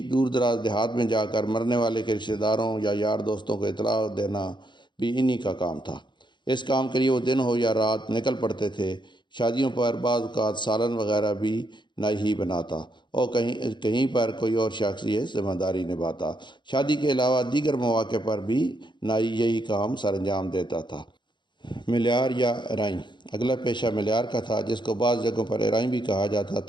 دور دراز دیہات میں جا کر مرنے والے کے رشتہ داروں یا یار دوستوں کو اطلاع دینا بھی انہی کا کام تھا۔ اس کام کے لیے وہ دن ہو یا رات نکل پڑتے تھے۔ شادیوں پر بعض اوقات سالن وغیرہ بھی نائی ہی بناتا اور کہیں پر کوئی اور شخص یہ ذمہ داری نبھاتا۔ شادی کے علاوہ دیگر مواقع پر بھی نائی یہی کام سر انجام دیتا تھا۔ ملیار یا ارائیں۔ اگلا پیشہ ملیار کا تھا، جس کو بعض جگہوں پر ارائیں بھی کہا جاتا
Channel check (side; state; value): right; late; 0.22 ms